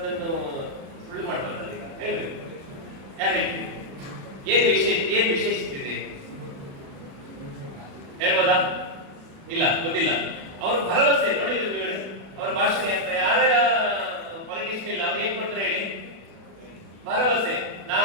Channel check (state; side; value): late; left; 36 ms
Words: ಸುಳ್ಳು ಮಾಡ್ಬಾರ್ದು. ಈಗ ಹೇಳ್ಬೇಕು, ಯಾರು ಹೇಳ್ತೀವಿ? ಏನು ವಿಶೇಷತೆ ಇದೆ ಹೇಳ್ಬೋದಾ? ಇಲ್ಲ, ಗೊತ್ತಿಲ್ಲ. ಅವ್ರ ಭರವಸೆ ನೋಡಿದ್ರು ನೀವು, ಅವ್ರ ಭಾಷಣ ಯಾರ್ಯಾರ ಪಾಲಿಟಿಷಿಯನ್ ಇಲ್ಲ, ಅವ್ರು ಏನ್ ಕೊಡ್ತಾರೆ ಹೇಳಿ? ಭರವಸೆ.